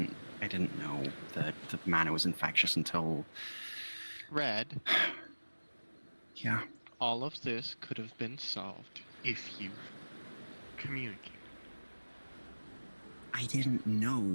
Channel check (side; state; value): both; inverted; correlation -1.00